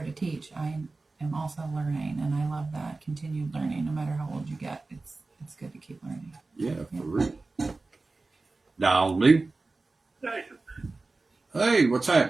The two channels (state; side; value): quieter; left; 3.5 dB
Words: to teach, I am also learning, and I love that continued learning. No matter how old you get, it's good to keep learning. Yeah, for real. Dial me. Jason, Hey, what's